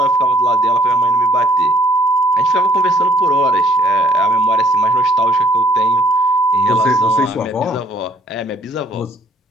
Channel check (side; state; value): both; normal; correlation 0.63